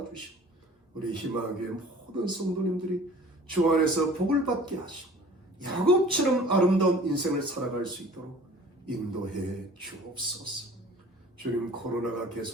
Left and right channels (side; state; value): both; normal; correlation 0.47